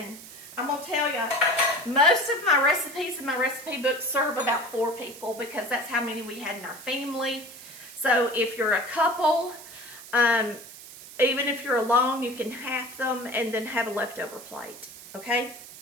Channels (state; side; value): noise; right; hiss, 16 dB below the sound